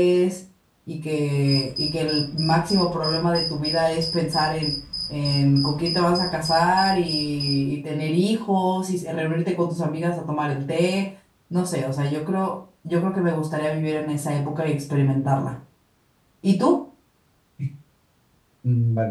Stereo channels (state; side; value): identical; both; correlation 1.00